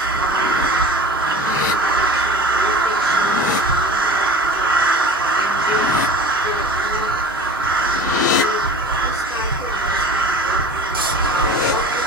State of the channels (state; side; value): normal; both; correlation 0.39